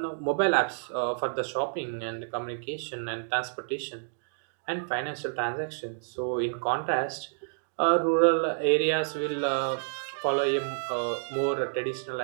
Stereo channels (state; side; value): silent; left; digital silence